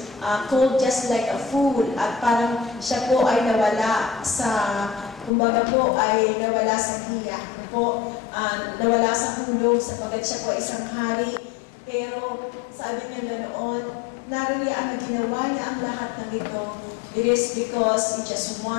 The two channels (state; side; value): drops out; right; at 5.3 s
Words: called just like a fool, at parang siya po ay nawala sa, kumbaga po ay nawala sa hiya, nawala sa hulog sapagkat siya po isang hari. Pero sabi niya na noon, naririyan na ginawa niya ang lahat ng ito. It is because he just